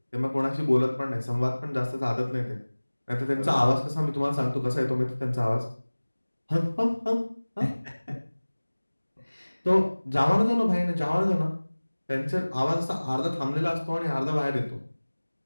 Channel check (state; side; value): inverted; both; correlation -1.00